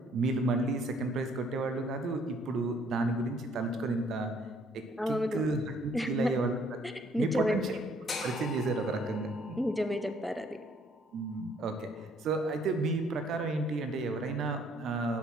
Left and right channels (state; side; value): normal; both; correlation 0.63